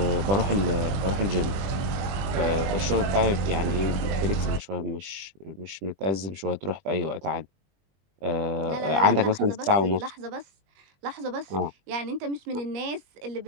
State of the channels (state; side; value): late; left; 20 ms